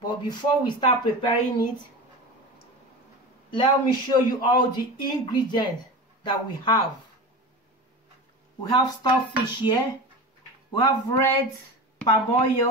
before we start preparing it, let me show you all the ingredients that we have. We have stockfish here. We have red palm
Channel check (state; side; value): normal; both; correlation 0.29